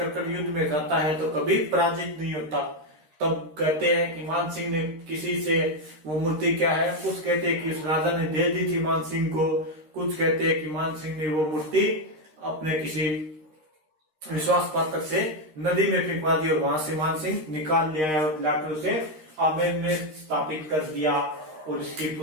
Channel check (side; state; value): left; late; 13 ms